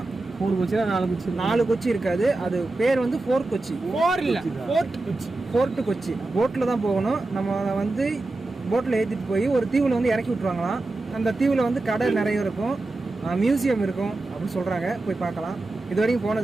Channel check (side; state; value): left; quieter; 3.1 dB